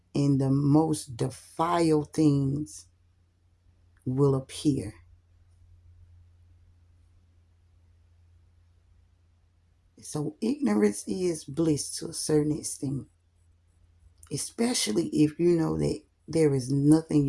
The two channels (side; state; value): both; identical; correlation 1.00